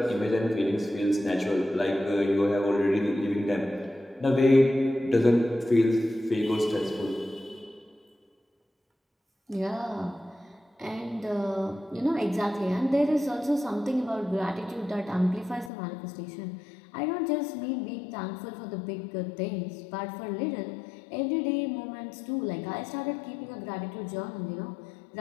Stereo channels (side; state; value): right; drops out; at 15.7 s